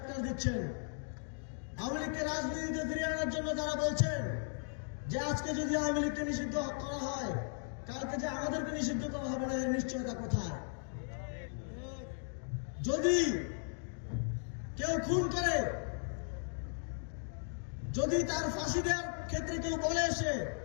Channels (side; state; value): right; silent; 53 dB below the other